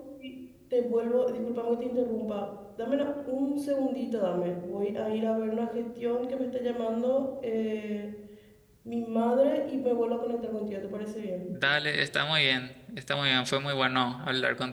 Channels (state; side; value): identical; both; correlation 1.00